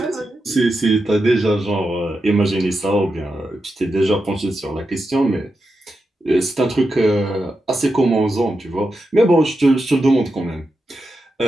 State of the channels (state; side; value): normal; both; correlation 0.88